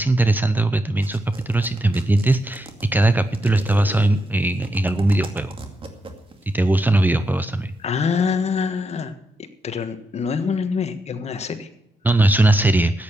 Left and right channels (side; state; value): both; normal; correlation 0.82